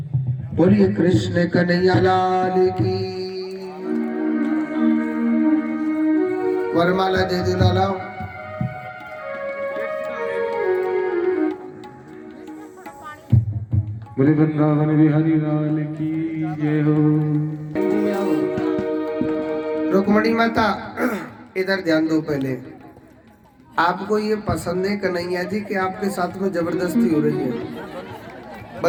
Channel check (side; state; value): both; identical; correlation 1.00